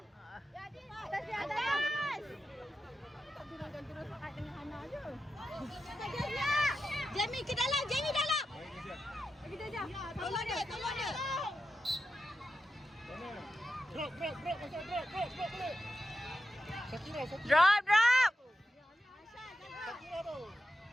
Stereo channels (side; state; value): both; normal; correlation 0.90